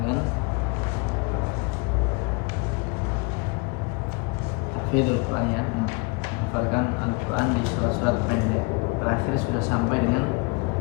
tahfidzul Quran, ya, menghafalkan Al-Quran di surat-surat pendek. Terakhir sudah sampai dengan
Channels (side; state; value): right; quieter; 29.9 dB